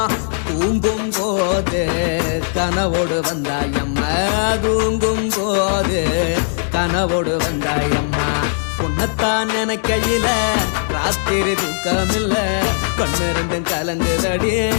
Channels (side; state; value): right; silent; digital silence